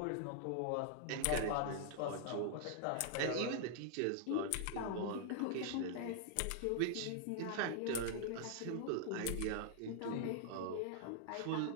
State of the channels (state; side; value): different; both; correlation 0.00